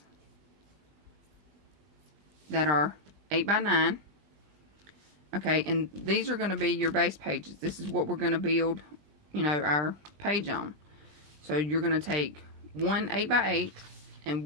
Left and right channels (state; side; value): late; left; 20 ms